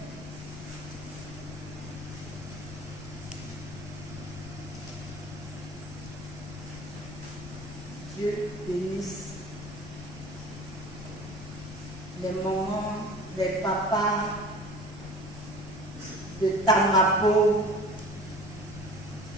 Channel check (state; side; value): noise; left; rumble, 11 dB below the sound